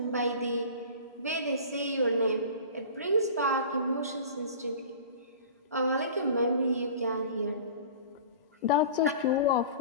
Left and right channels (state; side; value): inverted; both; correlation -0.39